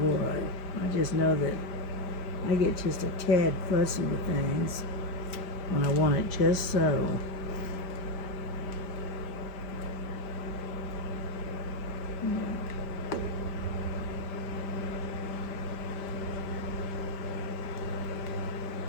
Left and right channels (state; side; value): late; right; 5.1 ms